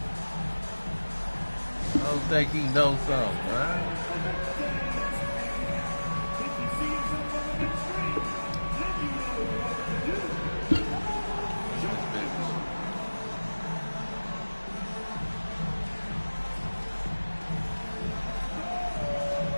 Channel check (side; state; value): both; inverted; correlation -1.00